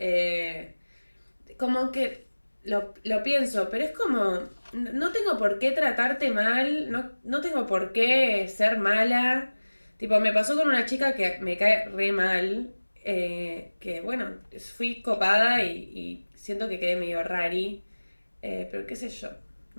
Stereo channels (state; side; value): inverted; both; correlation -1.00